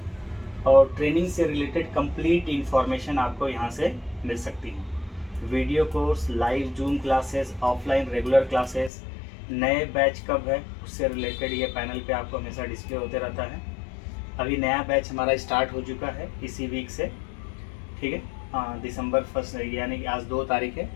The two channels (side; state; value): right; drops out; at 8.9 s